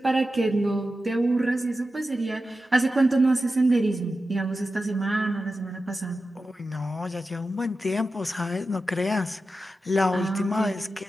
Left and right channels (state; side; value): normal; both; correlation 0.92